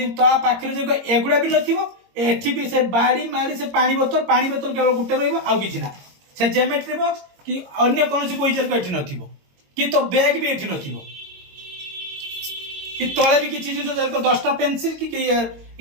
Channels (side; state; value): left; late; 22 ms